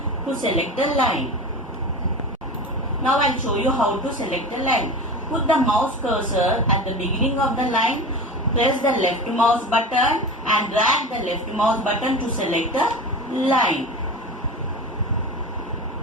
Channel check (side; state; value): both; normal; correlation 0.30